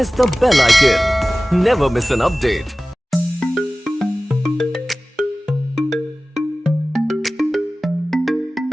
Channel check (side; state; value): both; normal; correlation 0.97